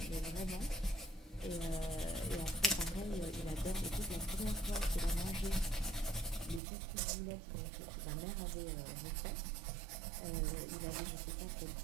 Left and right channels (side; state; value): left; drops out; at 6.6 s